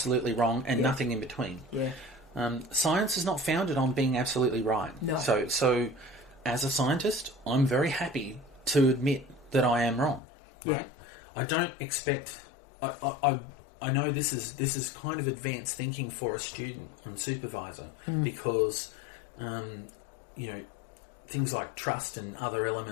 wrong and nothing in between. Yeah. Science is not founded on being absolutely right. No. So as a scientist, I'm very happy to admit that I am wrong. Right? I don't expect... I know this is kind of advanced thinking for a student on supervisor because, things like trust and other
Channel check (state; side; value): drops out; right; at 10.2 s